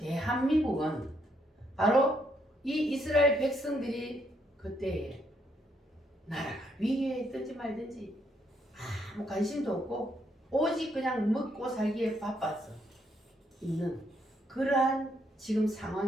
바로 이 이스라엘 백성들이 그때에 나라가 위기에 있든지 말든지 아무 관심도 없고 오직 그냥 먹고 살기에 바빴어 있는 그러한 지금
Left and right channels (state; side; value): normal; both; correlation 0.74